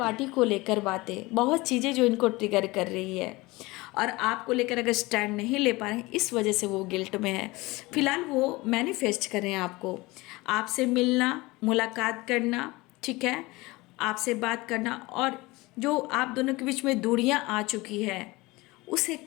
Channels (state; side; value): quieter; right; 21.9 dB